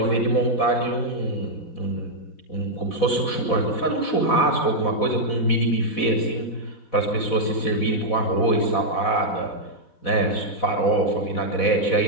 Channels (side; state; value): right; late; 4.1 ms